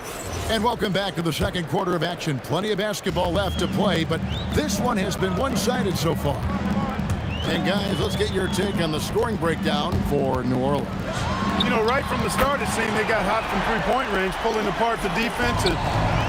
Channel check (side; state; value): both; identical; correlation 1.00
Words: And welcome back to the second quarter of action. Plenty of basketball left to play, but this one has been one-sided so far. And guys, let's get your take on the scoring breakdown for New Orleans. You know, right from the start, it seemed they got hot from three-point range, pulling apart the defense and